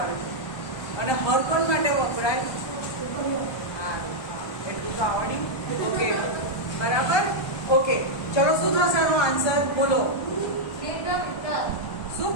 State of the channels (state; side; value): late; right; 1.2 ms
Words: અને હર કોણ માટે વપરાય? હા, એટલું તો આવડ્યું. ઓકે, બરાબર. ઓકે, ચલો શું થશે આનો આન્સર? બોલો. શું?